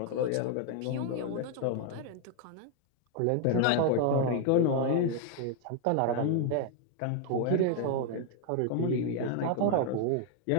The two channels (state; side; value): different; both; correlation 0.00